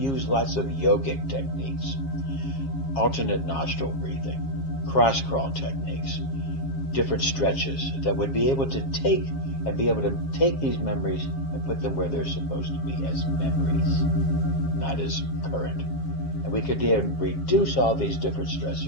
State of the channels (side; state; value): right; late; 7.4 ms